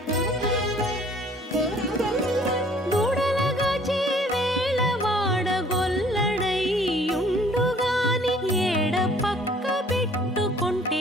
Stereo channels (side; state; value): both; normal; correlation 0.56